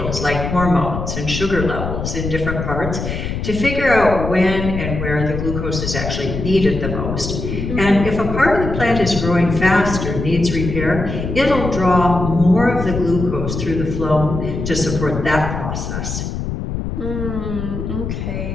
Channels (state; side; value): noise; left; rumble, 5 dB below the sound